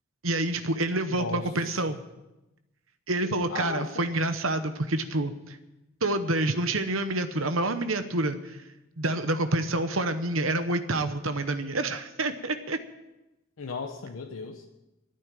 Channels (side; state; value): both; normal; correlation 0.21